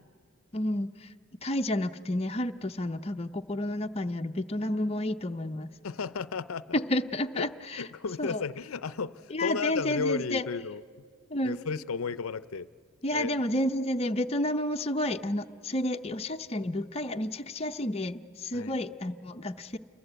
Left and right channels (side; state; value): both; normal; correlation 0.42